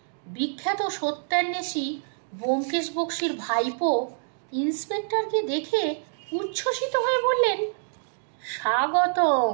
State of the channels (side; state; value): left; silent; digital silence